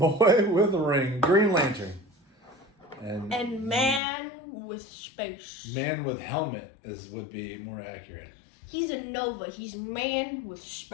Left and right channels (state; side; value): drops out; right; at 4.0 s